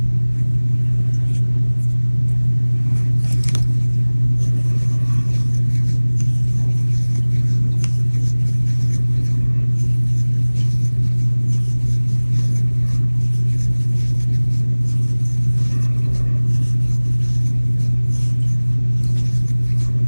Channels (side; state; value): both; inverted; correlation -1.00